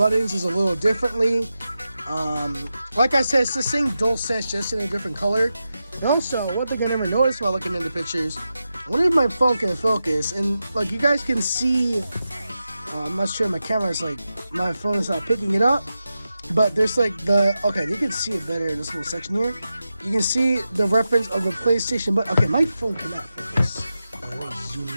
is a little differently. Like I said, it's the same DualSense, just in a different color. And also, one thing I never noticed while looking into pictures, I wonder if my phone can focus. And like you guys can see, I'm not sure my camera is like, my phone is not picking it up. But there's like okay, you can see it better in this little section here. You can see the reference of the PlayStation, but okay, my phone cannot focus. Let me zoom in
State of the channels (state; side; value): inverted; both; correlation -0.91